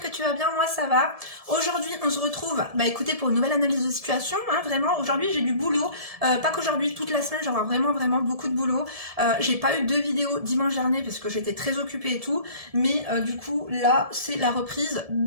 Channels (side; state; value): left; late; 1.7 ms